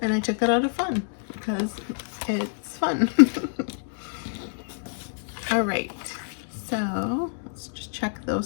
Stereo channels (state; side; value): silent; right; digital silence